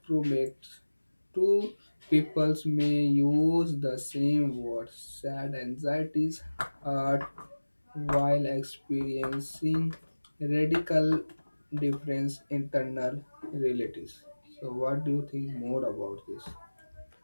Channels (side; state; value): both; inverted; correlation -1.00